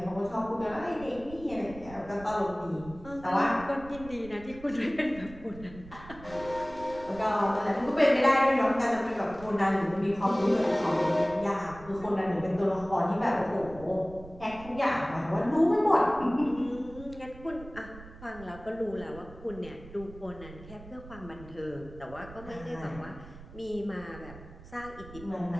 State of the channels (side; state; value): right; noise; rumble, 17 dB below the sound